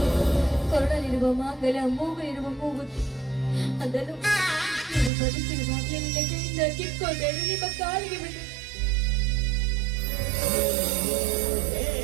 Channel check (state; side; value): drops out; left; at 5.1 s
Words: ಕೊರಳಲ್ಲಿರುವ ಮಾಂಗಲ್ಯ, ಮೂಗಲಿರುವ ಮೂಗುತಿ, ಅದನ್ನು ಬದುಕಿರುವಾಗಲೇ ನಿನ್ನ ಕೈಯಿಂದ ಕಿತ್ಕೊಂಡೇನು, ನಿಮ್ಮ ಕಾಲಿಗೆ ಬಿಟ್ಟು